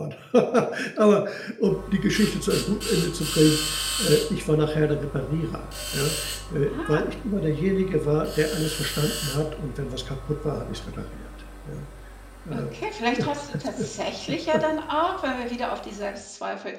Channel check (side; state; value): both; identical; correlation 1.00